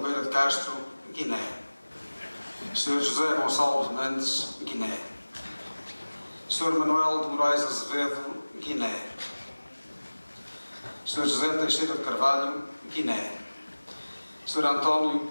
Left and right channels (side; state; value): both; inverted; correlation -1.00